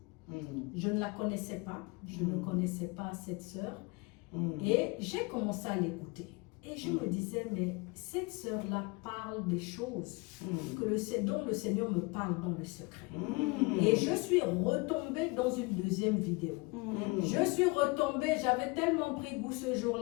Je ne la connaissais pas, je ne connaissais pas cette sœur. Et j'ai commencé à l'écouter. Et je me disais, mais cette sœur-là parle des choses dont le Seigneur me parle dans le secret. Et je suis retombée dans une deuxième vidéo. Je suis retombée, j'avais tellement pris goût ce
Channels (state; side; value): quieter; right; 27.0 dB